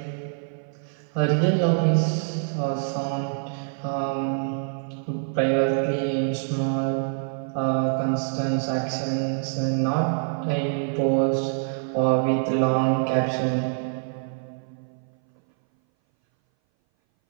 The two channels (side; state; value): left; silent; 59 dB below the other